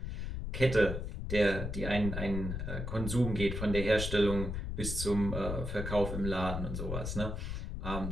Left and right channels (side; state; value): left; noise; rumble, 4 dB below the sound